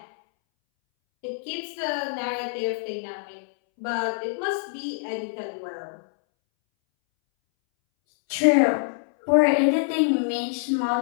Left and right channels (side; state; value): right; silent; 62 dB below the other